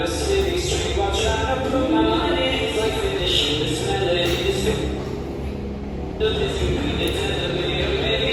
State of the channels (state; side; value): identical; both; correlation 1.00